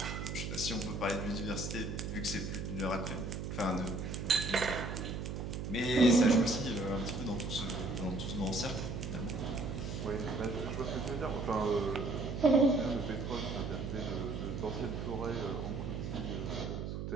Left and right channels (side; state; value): right; noise; hum, 4 dB below the sound